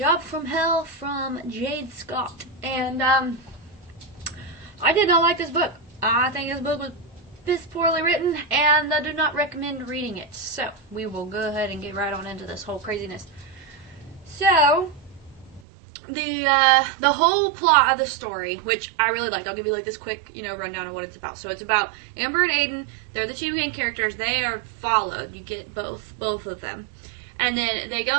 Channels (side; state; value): left; drops out; at 15.6 s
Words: from Hell from Jayde Scott. And I did not like this book. I think this book was piss poorly written, and I do not recommend reading it. So we will go ahead and get right on into this whole craziness. So the whole plot of the story, which I really liked, I'll give you like this quick, rundown of what it's about. So it's about Amber and Aiden. They're the two main characters. They are followed. You get both of them. And then they